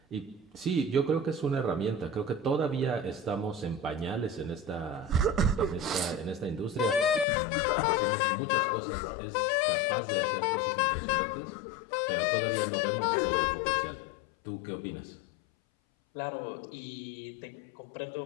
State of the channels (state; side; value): drops out; right; at 7.2 s